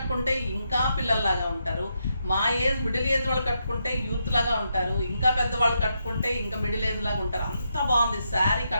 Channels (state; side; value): inverted; both; correlation -0.82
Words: ఇంకా పిల్లల్లాగా ఉంటారు. మా ఏజ్, మిడిల్ ఏజ్ వాళ్ళు కట్టుకుంటే యూత్ లాగా ఉంటారు, ఇంకా పెద్దవాళ్ళు కట్టుకుంటే ఇంకా మిడిల్ ఏజ్ లాగా ఉంటారు. అంత బాగుంది శారీ.